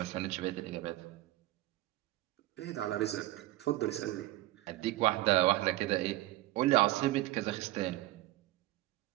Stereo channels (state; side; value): quieter; left; 16.9 dB